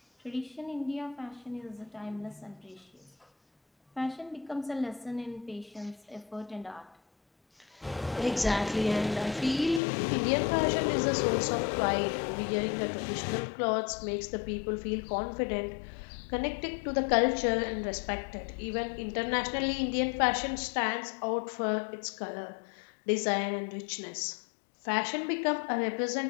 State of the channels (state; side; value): drops out; right; at 9.8 s